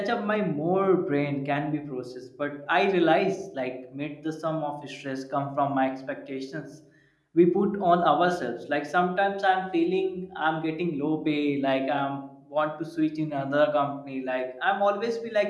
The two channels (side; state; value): both; identical; correlation 1.00